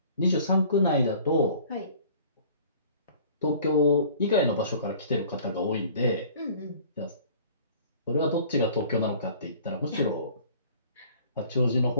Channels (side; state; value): both; inverted; correlation -0.50